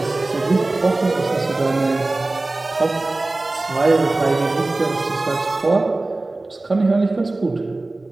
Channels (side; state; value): left; quieter; 3.0 dB